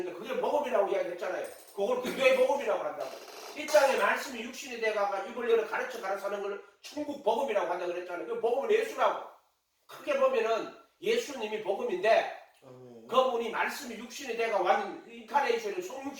그게 복음이라고 이야기했잖아요. 그걸 교회의 복음이라고 한다고. 이 땅에 말씀이 육신이 돼가가 입을 열어 가르쳐 사는 걸 천국 복음이라고 한다고 그랬잖아요. 그 복음은 예수라고. 크게 보면은 예수님이 복음인데 그분이 말씀이 육신이 돼가 완 인카네이션을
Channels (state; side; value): identical; both; correlation 1.00